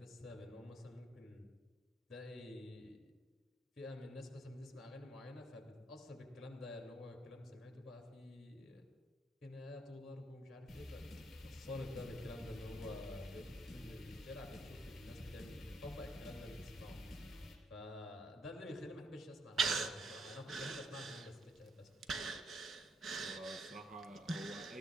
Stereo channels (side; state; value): both; normal; correlation 0.74